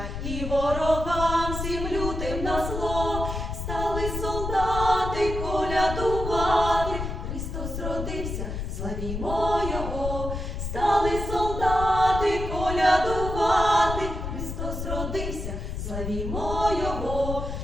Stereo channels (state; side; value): noise; left; rumble, 5 dB below the sound